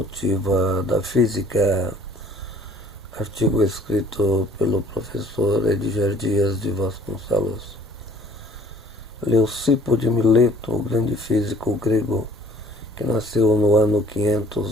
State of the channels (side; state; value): both; normal; correlation 0.55